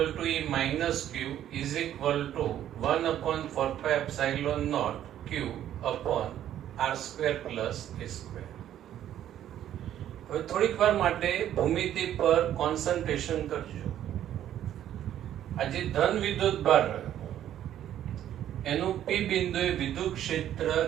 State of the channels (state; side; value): quieter; left; 11.3 dB